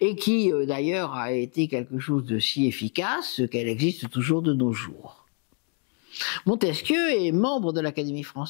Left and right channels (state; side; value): quieter; right; 36.9 dB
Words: qui d'ailleurs a été quelque chose de si efficace qu'elle existe toujours de nos jours. Montesquieu est membre de l'Académie